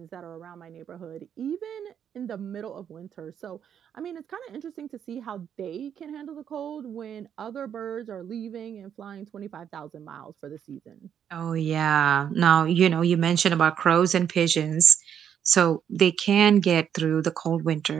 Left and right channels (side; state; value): left; quieter; 8.7 dB